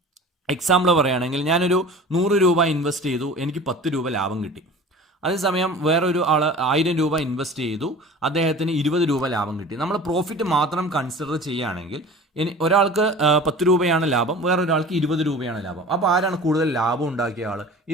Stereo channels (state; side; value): normal; both; correlation 0.40